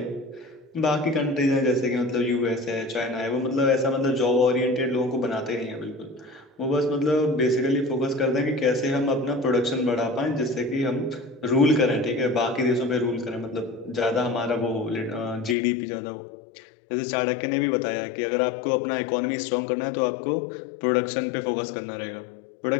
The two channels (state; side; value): drops out; right; at 15.6 s